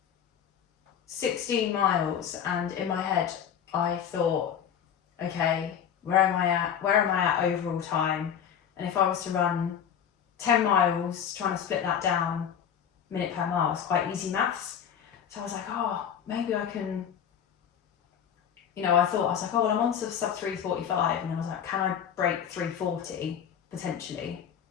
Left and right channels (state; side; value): quieter; right; 8.5 dB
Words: 16 miles, and in my head, I thought, okay, where am I at overall time? And if I was to run 10 miles, trying to split that down minute per mile is quite easy maths. So I was like, oh, maybe I can, I was like, oh, well, I'm on sub 3:45, and I was like, can I break 3:40 potentially?